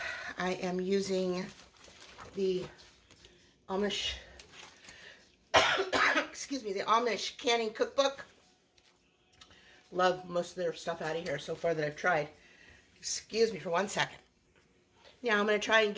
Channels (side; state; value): both; identical; correlation 1.00